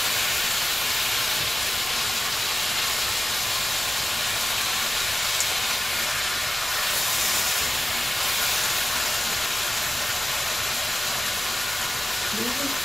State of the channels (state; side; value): normal; both; correlation 0.96